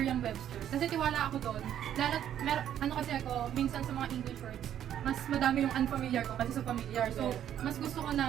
Kasi tiwala ako doon. Lalo, kasi ako, minsan sa mga English words, mas madami yung unfamiliar ko kasi sa familiar. So, mas gusto ko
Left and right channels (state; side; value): quieter; left; 10.5 dB